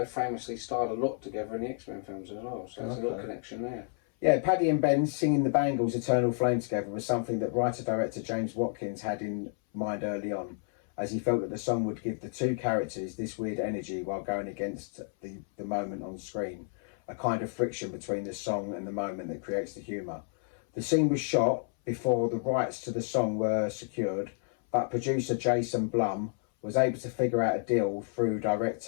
famously starred a lot together in the X-Men films as well, so there's a little connection there. Yeah, Paddy and Ben singing the Bangles' Eternal Flame together was something that writer-director James Watkins had in mind early on, as he felt that the song would give the two characters this weird energy while going against the moment on screen, a kind of friction between the song and the moment that creates the humour. The scene was shot before the rights to the song were secured, but producer Jason Blum was able to figure out a deal through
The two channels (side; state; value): right; silent; 57 dB below the other